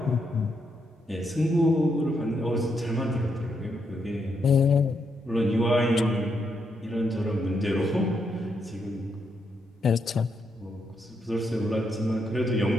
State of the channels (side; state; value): both; normal; correlation 0.79